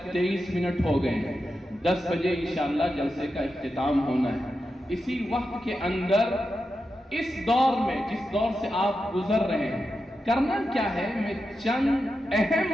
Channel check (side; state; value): both; normal; correlation 0.89